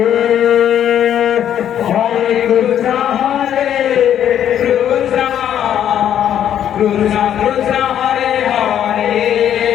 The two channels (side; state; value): right; quieter; 10.1 dB